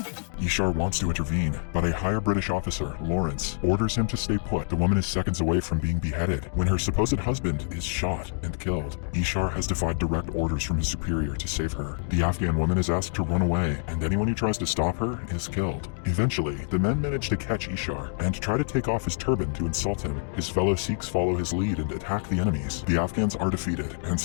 Ishar wants to intervene, but a higher British officer, Lawrence, orders him to stay put. The woman is seconds away from being beheaded when her supposed husband is shot and killed. Ishar has defied direct orders from his superior to save her. The Afghan woman is asked to run away, and anyone who tries to stop her is killed. Eventually, the men manage to catch Ishar and try to take off his turban to insult him. His fellow Sikhs follow his lead and attack the enemies. The Afghans are defeated, and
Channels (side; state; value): right; silent; 60 dB below the other